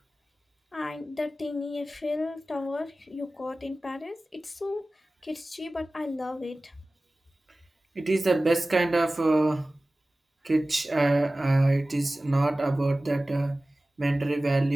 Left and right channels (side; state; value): both; normal; correlation 0.97